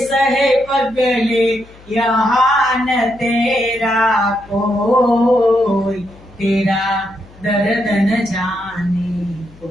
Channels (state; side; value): noise; left; hum, 24 dB below the sound